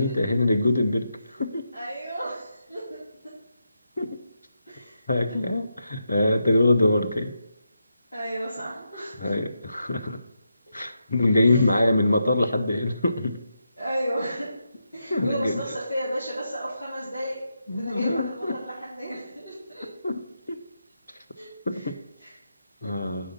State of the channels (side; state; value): both; inverted; correlation -0.84